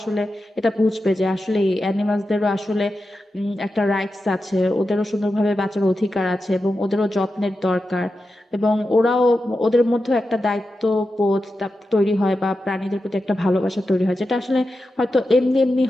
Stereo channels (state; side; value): normal; both; correlation 0.90